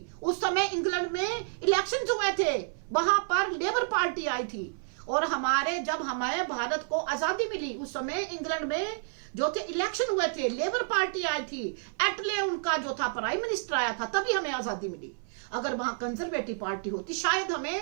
उस समय इंग्लैंड में इलेक्शंस हुए थे, वहां पर लेबर पार्टी आई थी। और जब हमारे भारत को आजादी मिली उस समय इंग्लैंड में जो थे इलेक्शन हुए थे, लेबर पार्टी आई थी, एटले उनका जो था प्राइम मिनिस्टर आया था, तभी हमें आजादी मिली। अगर वहां कंजर्वेटिव पार्टी होती शायद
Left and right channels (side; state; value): left; silent; 58 dB below the other